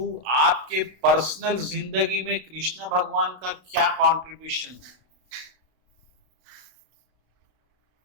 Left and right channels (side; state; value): left; late; 32 ms